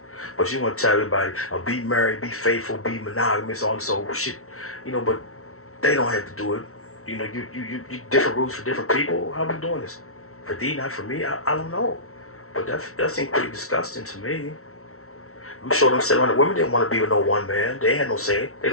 But you want to tell everybody, be married, be faithful, be monogamous, all this old shit. You know, but they don't have to do it. You know, you different rules for different people. How are we doing this? For thee, not for me? I don't know. But that seems pretty disgusting to me. I'm sure them 700 women didn't want to be with no one man. They had no say. They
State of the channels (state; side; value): late; right; 0.63 ms